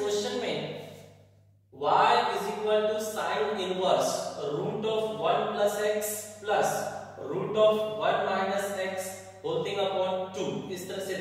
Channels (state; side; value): identical; both; correlation 1.00